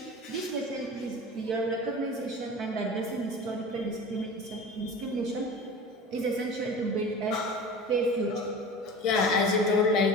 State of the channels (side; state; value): both; normal; correlation 0.36